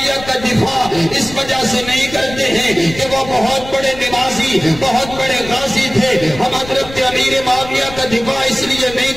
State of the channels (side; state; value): left; noise; rumble, 14 dB below the sound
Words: کا دفاع اس وجہ سے نہیں کرتے ہیں کہ وہ بہت بڑے نمازی، بہت بڑے غازی تھے۔ ہم حضرت امیر معاویہ کا دفاع اس لیے